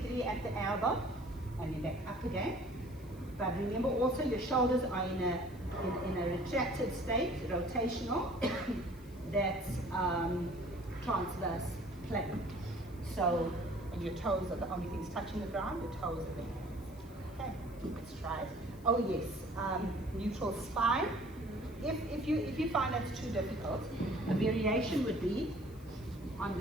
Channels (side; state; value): left; noise; hiss, 25 dB below the sound